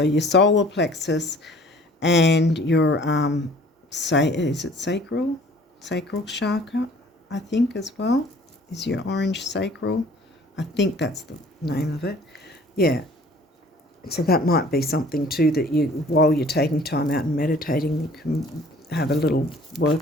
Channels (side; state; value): both; normal; correlation 0.52